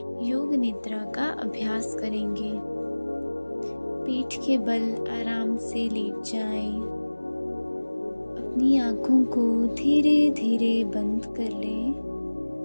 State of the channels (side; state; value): both; inverted; correlation -1.00